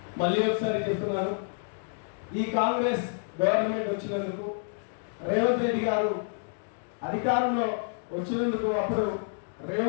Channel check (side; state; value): right; silent; digital silence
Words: మళ్ళీ ఒకసారి చెప్తున్నాను, ఈ కాంగ్రెస్ గవర్నమెంట్ వచ్చినందుకు, రేవంత్ రెడ్డి గారు అధికారంలో వచ్చినందుకు, అప్పుడు